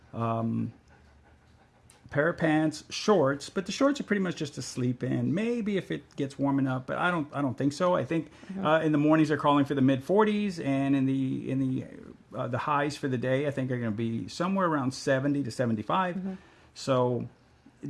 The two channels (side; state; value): both; identical; correlation 1.00